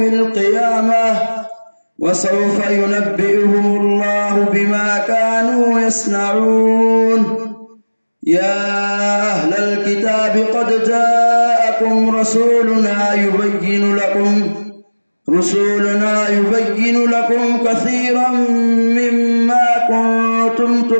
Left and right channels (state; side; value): inverted; both; correlation -1.00